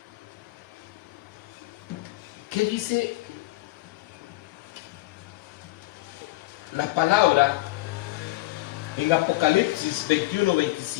¿qué dice la palabra en Apocalipsis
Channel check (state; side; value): quieter; right; 19.5 dB